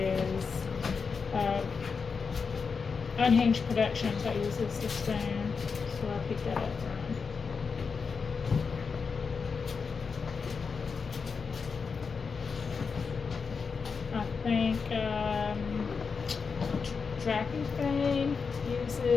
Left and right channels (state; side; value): quieter; right; 5.3 dB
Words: Unhinged Productions that uses the spoon. So I picked that up from. I think Tracking Thing